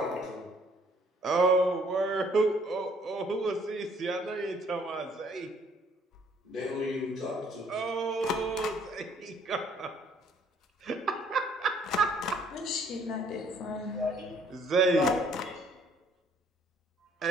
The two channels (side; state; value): both; normal; correlation 0.62